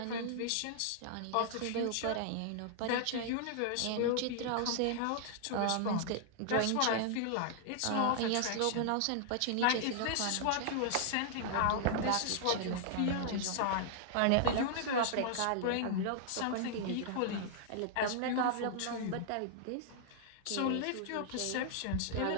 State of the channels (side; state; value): both; different; correlation -0.01